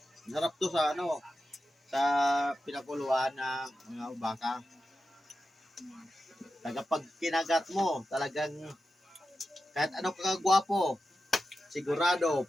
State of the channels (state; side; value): normal; both; correlation 0.91